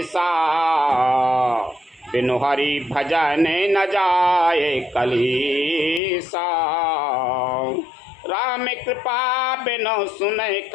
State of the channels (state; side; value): drops out; right; at 6.0 s